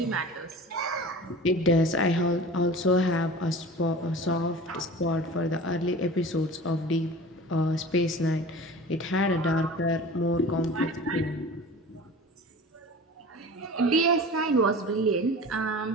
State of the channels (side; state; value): both; normal; correlation 0.38